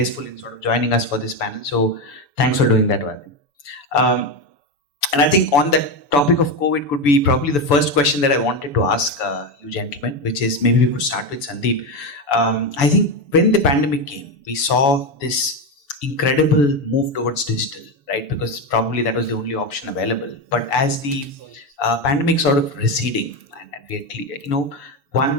in sort of joining us for this panel. So thanks for doing that, Vadi. And I think on that topic of COVID could be probably the first question that I wanted to ask you gentlemen, which is maybe we could start with Sandeep. I think when the pandemic came, we saw this incredible move towards digital, right? Because probably that was the only option available. But as the pandemic sort of receding, and we are clear,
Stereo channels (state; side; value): late; right; 7.0 ms